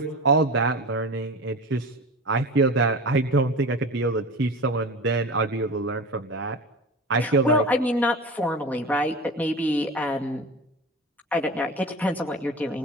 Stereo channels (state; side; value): normal; both; correlation 0.31